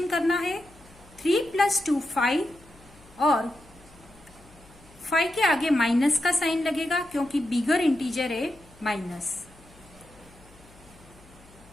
करना है। 3 + 2 5, और 5 के आगे माइनस का साइन लगेगा क्योंकि बिगर इंटीजर है माइनस।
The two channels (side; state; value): left; noise; hum, 25 dB below the sound